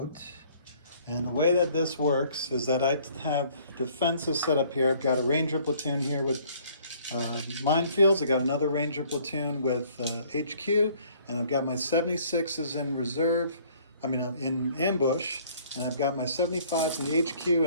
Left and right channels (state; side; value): inverted; both; correlation -0.58